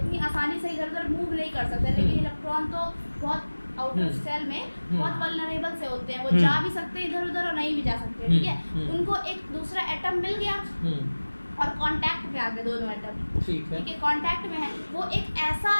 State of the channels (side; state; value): both; inverted; correlation -1.00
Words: आसानी से इधर उधर मूव नहीं कर सकता, लेकिन इलेक्ट्रॉन तो बहुत आउटर सेल में बहुत वल्नरेबल से होते हैं, वो जा भी सकते हैं इधर उधर और नहीं भी जा सकते। ठीक है, उनको एक दूसरा एटम मिल गया और कांटेक्ट में आ गए दोनों एटम। ठीक है, कांटेक्ट में है, वो एक ऐसा